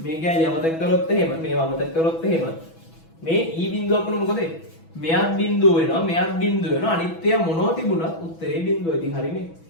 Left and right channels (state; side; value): late; right; 6.1 ms